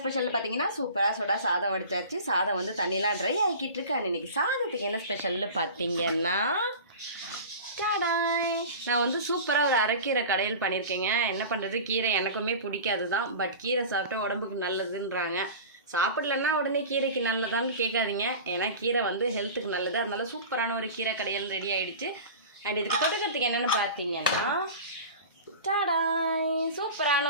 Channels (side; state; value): both; inverted; correlation -0.35